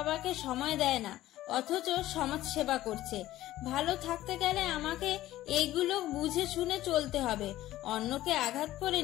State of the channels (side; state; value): right; quieter; 15.0 dB